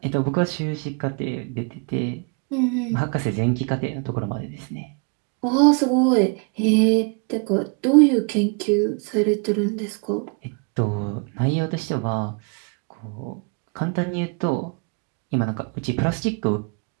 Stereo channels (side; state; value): left; quieter; 34.7 dB